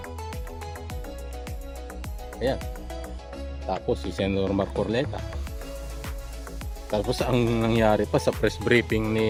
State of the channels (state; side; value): identical; both; correlation 1.00